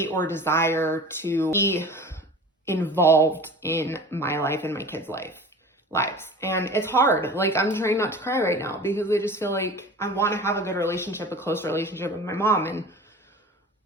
or desire to be involved in my life and my kids' lives. And it's hard. Like, I'm trying not to cry right now because I just feel like I want to have a good relationship, a close relationship with my mom. And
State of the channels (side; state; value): both; normal; correlation 0.38